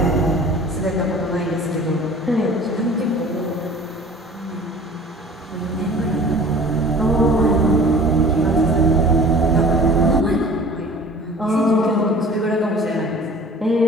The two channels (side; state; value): both; normal; correlation 0.45